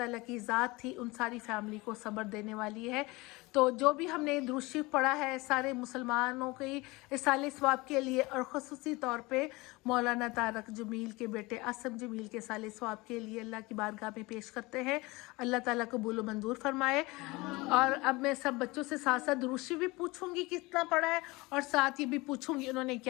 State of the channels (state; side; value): quieter; right; 23.0 dB